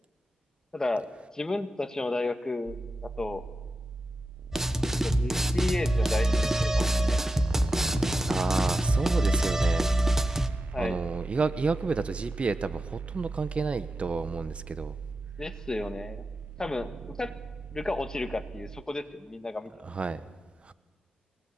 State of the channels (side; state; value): both; normal; correlation 0.91